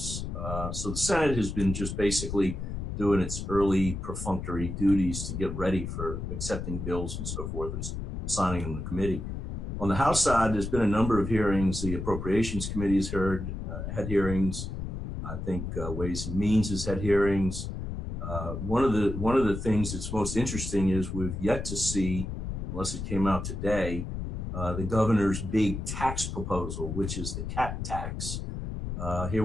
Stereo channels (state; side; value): noise; left; rumble, 5 dB below the sound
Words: So the Senate has been just basically doing its early perfunctory duties to get ready for accepting bills and so forth and signing them in the committee. On the House side, there's been a number of hearings. The Appropriations Committee has had hearings. I think Ways and Means has had hearings. One of the things that's most interesting is we've yet to see, unless it came out today, the governor's big tax proposal, which is the cat tax. Here